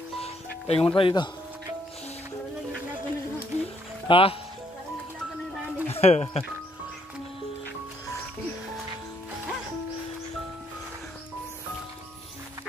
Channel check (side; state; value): both; normal; correlation 0.70